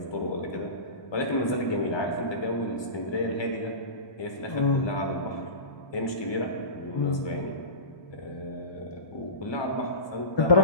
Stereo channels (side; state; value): right; late; 1.2 ms